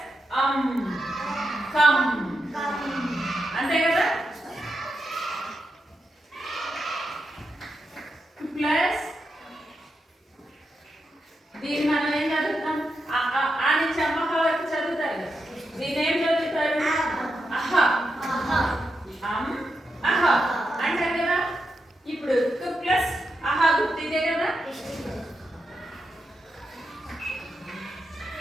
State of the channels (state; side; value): normal; both; correlation 0.86